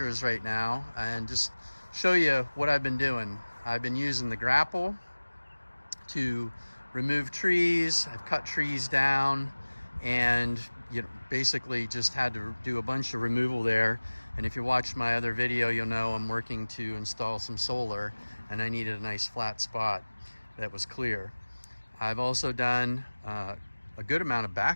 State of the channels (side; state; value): both; inverted; correlation -1.00